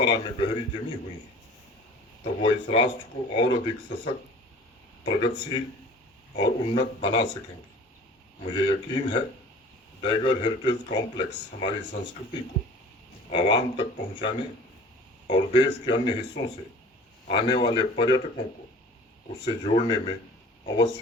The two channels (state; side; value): normal; both; correlation 0.45